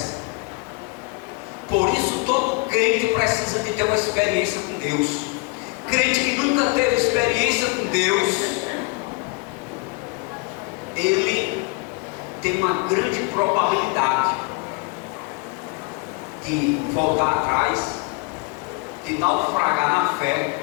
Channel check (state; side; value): quieter; right; 28.9 dB